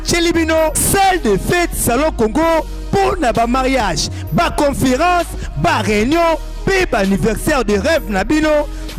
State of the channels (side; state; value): both; identical; correlation 1.00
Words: bino salle de fête salon Congo pour na ba mariage ba conférence ba réunion pe ba anniversaire de rêve na bino